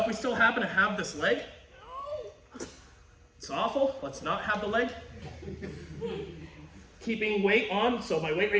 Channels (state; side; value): identical; both; correlation 1.00